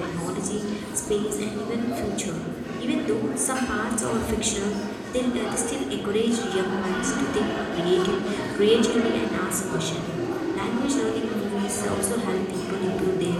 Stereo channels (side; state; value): both; identical; correlation 1.00